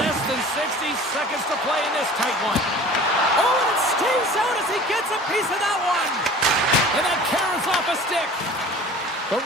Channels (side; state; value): both; normal; correlation 0.44